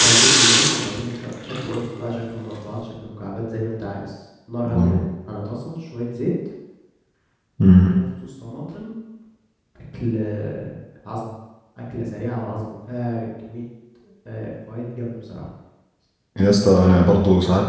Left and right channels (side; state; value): both; identical; correlation 1.00